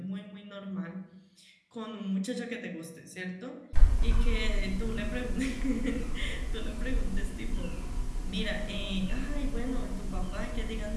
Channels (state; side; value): identical; both; correlation 1.00